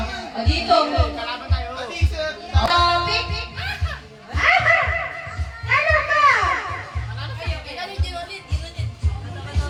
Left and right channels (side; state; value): both; identical; correlation 1.00